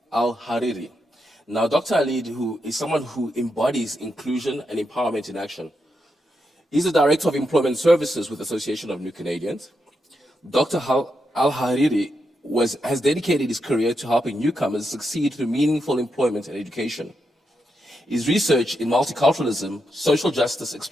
Hariri. Now, Dr. Khalid, who is someone who embodies inclusion and empowerment in action. He's the Director of Employment Services with the Association of New Canadians. Dr. Al-Hariri has dedicated his career to helping newcomers succeed through meaningful employment and education. His research in multiculturalism, social justice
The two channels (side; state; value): both; normal; correlation 0.84